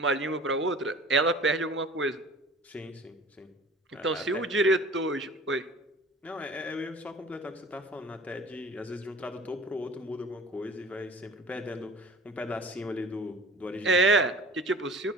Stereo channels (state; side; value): normal; both; correlation 0.44